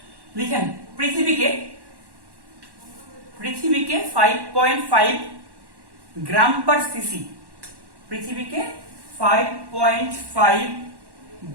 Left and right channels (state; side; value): late; left; 1.1 ms